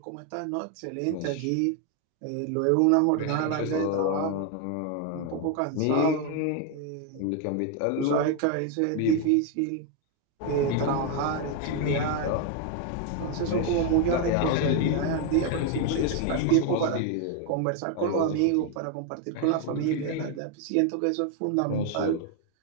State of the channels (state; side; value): different; both; correlation 0.01